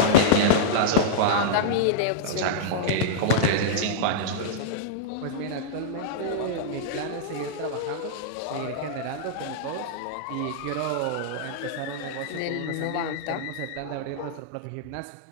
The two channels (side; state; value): both; different; correlation -0.02